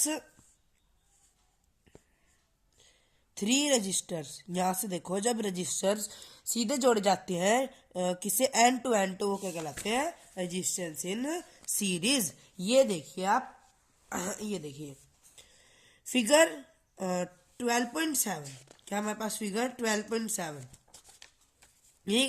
three resistors, यहाँ से देखो, जब registers सीधे जोड़े जाते हैं किसे, एंड टू एंड, तो वो क्या कहलाते हैं, रजिस्टेंस इन सीरीज. ये देखिए आप, ये देखिए फिगर 12.7. क्या हमारे पास फिगर 12.7 यही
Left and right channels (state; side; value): identical; both; correlation 1.00